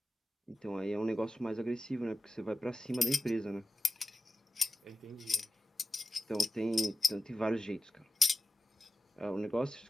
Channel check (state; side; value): normal; both; correlation 0.92